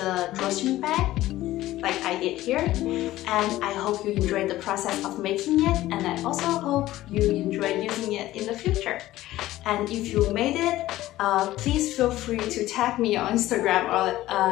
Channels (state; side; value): quieter; right; 15.6 dB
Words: drawstring bag, like I did here. And I hope you enjoyed the process of making it, and I also hope you enjoy using it in the future. And if you made it, please feel free to tag me on Instagram